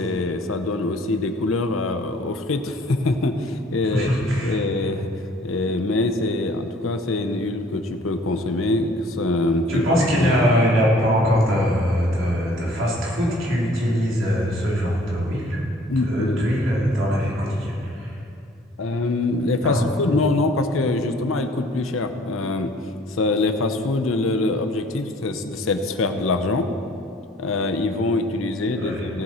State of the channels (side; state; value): both; normal; correlation 0.55